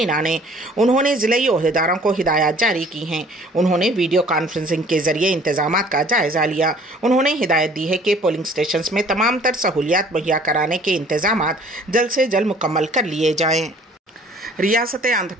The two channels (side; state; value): both; normal; correlation 0.53